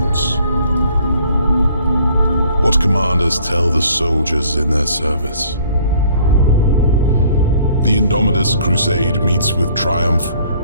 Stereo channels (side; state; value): both; inverted; correlation -0.58